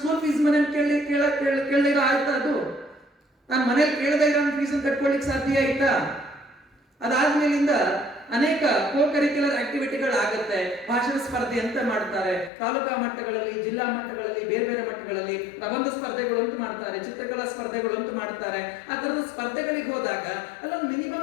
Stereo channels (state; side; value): drops out; right; at 12.5 s